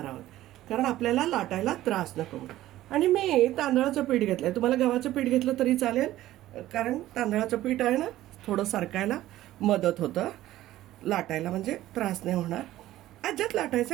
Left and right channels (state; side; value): quieter; left; 14.7 dB